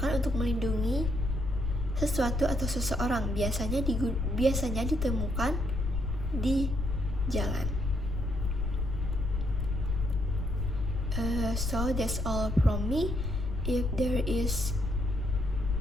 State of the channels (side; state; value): left; noise; rumble, 2 dB below the sound